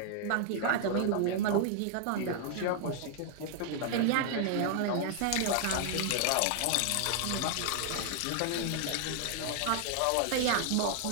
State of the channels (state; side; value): different; both; correlation 0.00